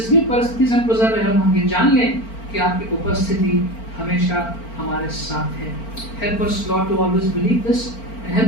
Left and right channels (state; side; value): late; right; 4.4 ms